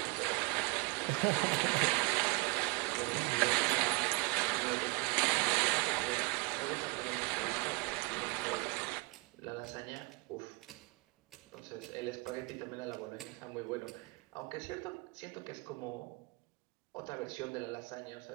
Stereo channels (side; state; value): left; quieter; 27.4 dB